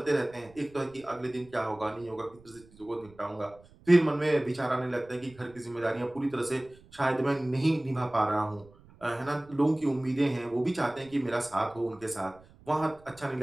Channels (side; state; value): right; noise; rumble, 25 dB below the sound